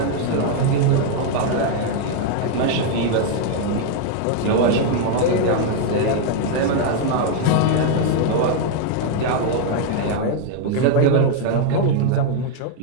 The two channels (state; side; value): different; both; correlation 0.00